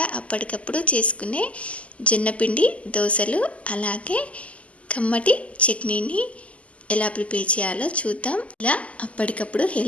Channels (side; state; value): right; late; 0.064 ms